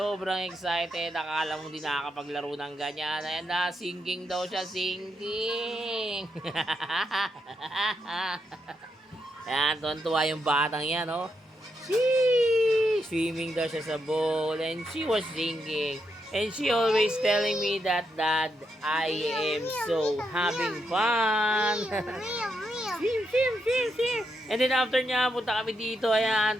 excited. Akala mo di nakakapaglaro ng ganyan. Ayan na, singing daw siya, singing. Ayan, tuwan-tuwa yung batang yan, oh. Swimming daw siya sa bowl and she was singing. And she always telling me that, Dad, I am so having fun. Swim. And then after niya, punta kami dito, ayan,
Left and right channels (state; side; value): normal; both; correlation 0.82